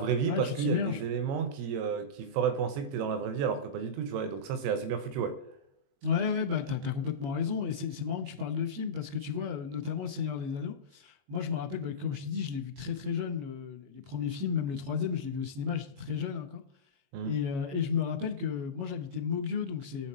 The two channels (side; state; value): left; late; 22 ms